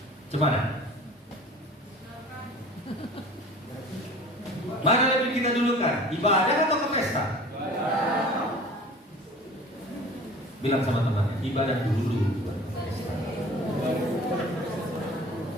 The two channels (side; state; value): both; normal; correlation 0.43